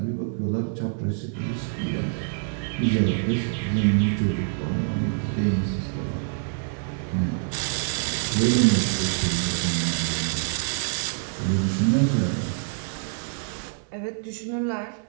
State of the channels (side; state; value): left; silent; digital silence